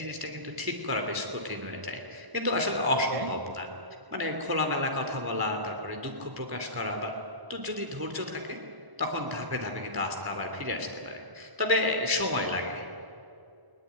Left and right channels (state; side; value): late; left; 1.0 ms